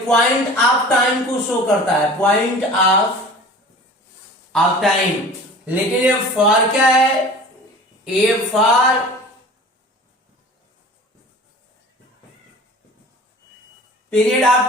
पॉइंट ऑफ टाइम को शो करता है, पॉइंट ऑफ टाइम। लेकिन ये फॉर क्या है, ये फॉर पीरियड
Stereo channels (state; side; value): normal; both; correlation 0.41